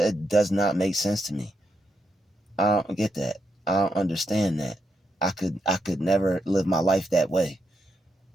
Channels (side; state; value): both; normal; correlation 0.81